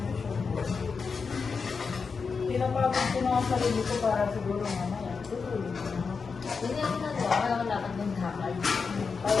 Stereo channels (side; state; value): right; quieter; 5.2 dB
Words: Pinapagod ko na ang sarili ko para siguro mamaya. Hindi ako nagawa. Kaya wala ka ng hakal.